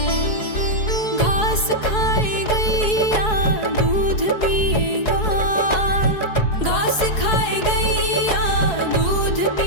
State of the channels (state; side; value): late; right; 4.7 ms